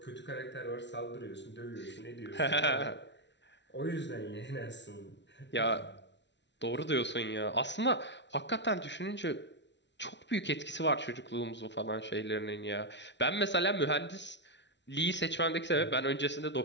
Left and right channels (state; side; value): late; right; 0.51 ms